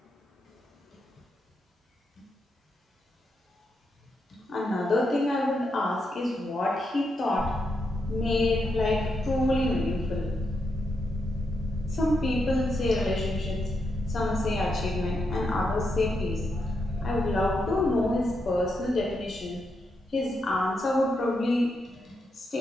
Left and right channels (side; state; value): both; normal; correlation 0.83